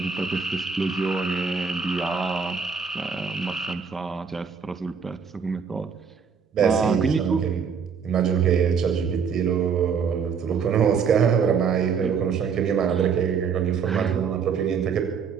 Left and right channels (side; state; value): left; quieter; 6.4 dB